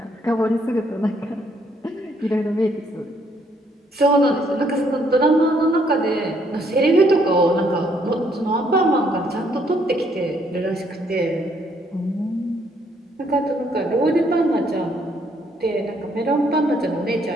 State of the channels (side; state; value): both; normal; correlation 0.69